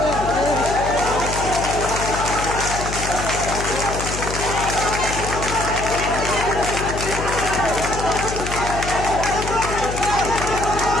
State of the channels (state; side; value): noise; left; hum, 6 dB below the sound